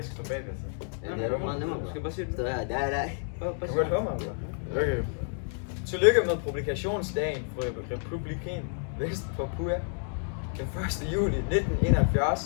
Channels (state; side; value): silent; right; 58 dB below the other